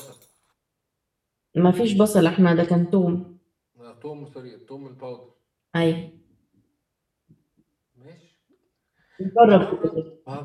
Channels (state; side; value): identical; both; correlation 1.00